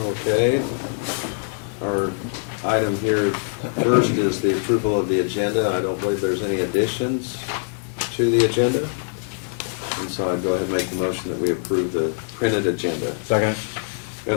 our item here first is the approval of the agenda. I don't believe there's any additions to the agenda. And so I'd go ahead and make the motion that we approve the printed agenda. Second.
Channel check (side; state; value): right; silent; digital silence